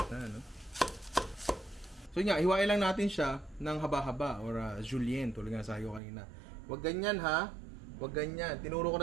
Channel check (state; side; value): drops out; left; at 6.0 s